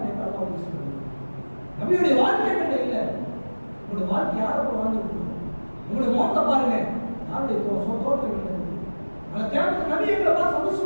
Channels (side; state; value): both; inverted; correlation -1.00